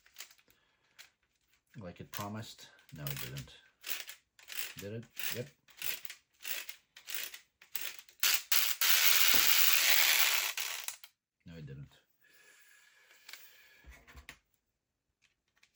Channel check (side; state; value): both; identical; correlation 1.00